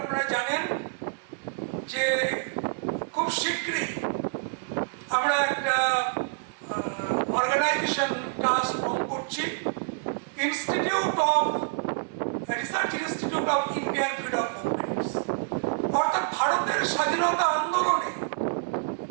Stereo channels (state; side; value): silent; left; digital silence